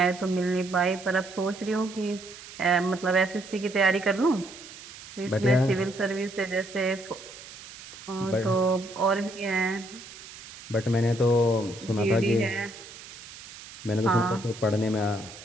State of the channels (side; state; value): right; noise; hiss, 16 dB below the sound